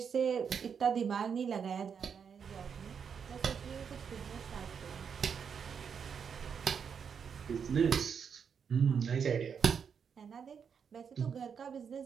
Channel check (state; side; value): quieter; left; 6.8 dB